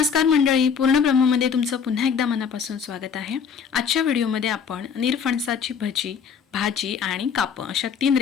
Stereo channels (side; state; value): right; quieter; 6.7 dB